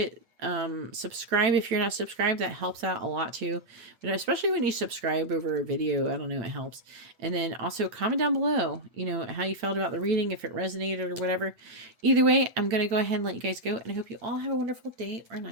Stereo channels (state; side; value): late; left; 8.9 ms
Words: Subscribe if you're not subscribed. That helps out a lot too, but especially when you subscribe over a video, I don't know, it helps. And then also comment down below, you know, how you felt about the reading, if it resonated or whatever. Either way, I'm going to go ahead and let you guys go, and I hope you all have a wonderful day or